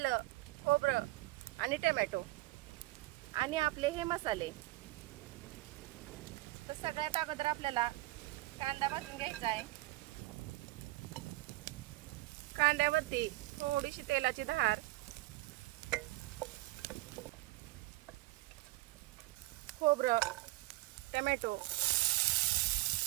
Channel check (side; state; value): left; quieter; 19.7 dB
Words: खोबरं आणि टोमॅटो आणि आपले हे मसाले. तर सगळ्यात अगोदर आपल्याला कांदा भाजून घ्यायचा आहे. कांद्यावरती थोडीशी तेलाची धार, खोबरं, टोमॅटो.